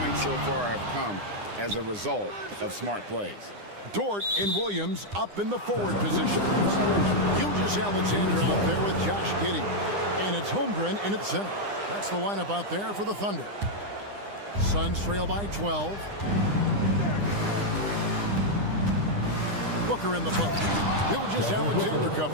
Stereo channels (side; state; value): left; late; 9.9 ms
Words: so far have come as a result of smart plays. Dort and Williams up in the forward positions. Gilgeous-Alexander out there with Josh Giddey. And it's Holmgren in at center. That's the lineup out there for the Thunder. Suns trail by 12. Booker in the post. Gilgeous-Alexander